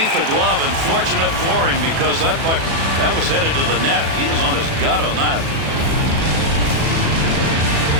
the glove, and fortunate for him because that puck, that was headed to the net. He was on his gut on that.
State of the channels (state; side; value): late; left; 37 ms